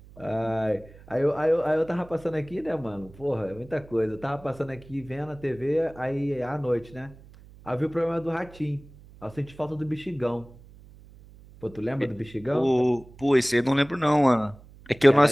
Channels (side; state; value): right; noise; hum, 22 dB below the sound